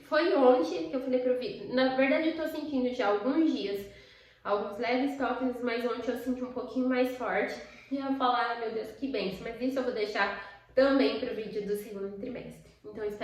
foi ontem que eu falei pro Vitor, na verdade eu tô sentindo já há alguns dias, alguns leves toques, mas ontem eu senti um pouquinho mais forte. E eu falo, ai meu Deus, que bênção, mas isso eu vou deixar também pro vídeo do segundo trimestre. Então eu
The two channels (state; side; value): identical; both; correlation 1.00